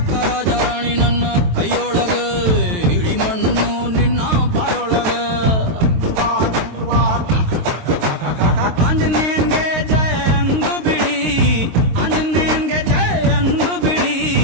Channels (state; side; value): late; left; 23 ms